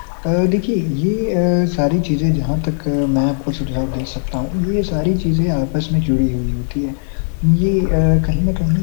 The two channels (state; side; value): silent; right; digital silence